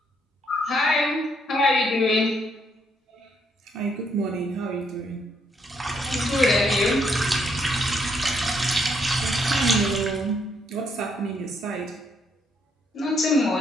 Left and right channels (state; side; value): normal; both; correlation 0.73